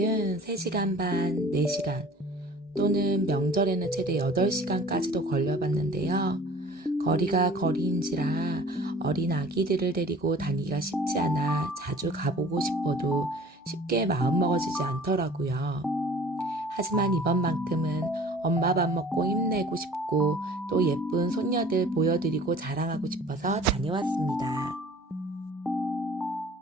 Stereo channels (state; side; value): normal; both; correlation 0.47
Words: 3시간 반, 4시간 또는 명절에는 최대 8시간까지도 걸려봤는데요. 거리가 거리인지라 어린 아기들을 데리고 다니기가 쉽지 않아 자주 가보고 싶어도 쉽게 마음먹어지지 않더라고요. 하지만 이번만큼은 엄마 밥 먹고 힘내고 싶고 또 예쁜 손녀들 보여드리고 자랑하고 싶어서 다녀왔습니다.